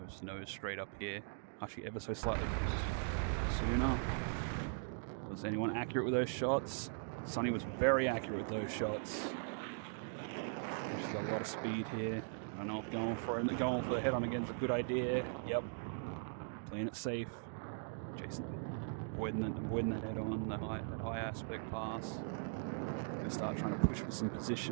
to nose straight up here. Hashi ever so slightly sooner. Was anyone accurate with those shots? Sunny was very accurate with those shots. She's got a lot of speed here. I don't know if going for the head on again is a good idea. Yep. Playing it safe. Jason avoiding that head on, that high aspect pass. Gonna start trying to push for some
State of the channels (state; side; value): silent; left; digital silence